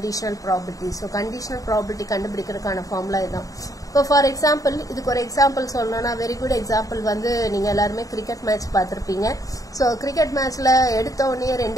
probability. So conditional probability கண்டுபிடிக்கிறதுக்கான formula இதான். இப்போ for example, இதுக்கு ஒரு example சொல்லணும்னா very good example வந்து நீங்க எல்லாருமே cricket match பார்த்திருப்பீங்க. So cricket matchல எடுத்த உடனே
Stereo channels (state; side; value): late; right; 0.17 ms